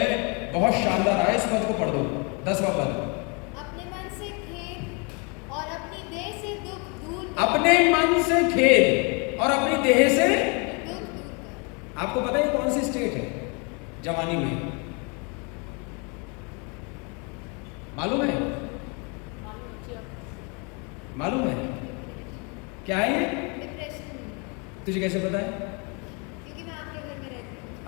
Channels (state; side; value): quieter; right; 33.2 dB